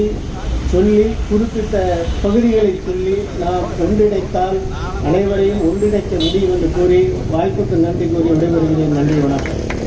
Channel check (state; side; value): identical; both; correlation 1.00